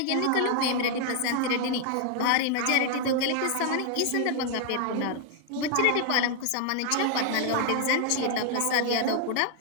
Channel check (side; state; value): both; different; correlation 0.00